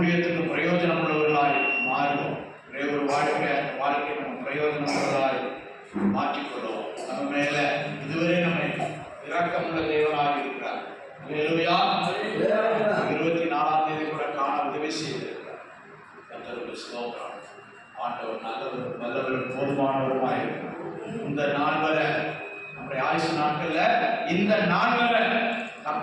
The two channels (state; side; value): identical; both; correlation 1.00